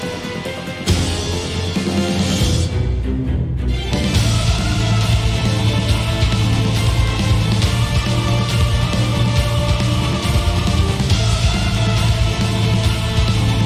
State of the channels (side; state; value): both; identical; correlation 1.00